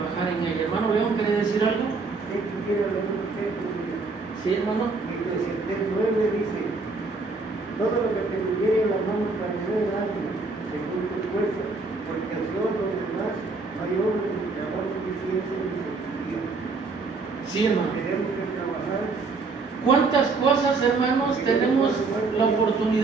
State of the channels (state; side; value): quieter; left; 4.0 dB